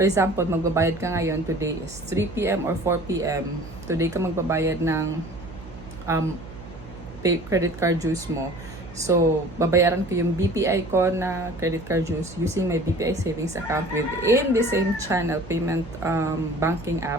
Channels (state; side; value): noise; right; hum, 15 dB below the sound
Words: example, magbabayad ka ngayon, today is 3 p.m. or 4 p.m. Today ka magbabayad ng credit card dues mo. So, babayaran ko yung BPI ko na credit card dues using my BPI savings account within the same channel payment banking